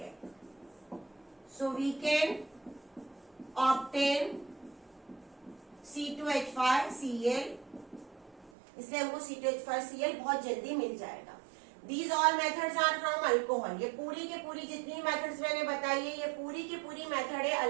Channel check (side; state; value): left; drops out; at 8.5 s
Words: so we can obtain C2H5Cl। इसलिए हमको C2H5Cl बहुत जल्दी मिल जाएगा। These all methods are from alcohol। ये पूरी के पूरी जितनी मेथड्स मैंने बताई है, ये पूरी की पूरी मेथड है